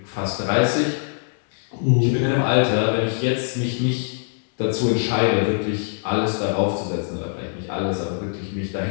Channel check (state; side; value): silent; right; 64 dB below the other